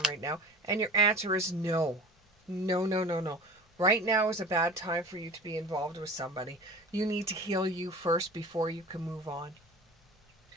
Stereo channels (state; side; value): normal; both; correlation 0.38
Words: right now, and your answer is no. No, no, no, no. Right now is a bad time for you to be involved with somebody. You need to heal you first before you can move on.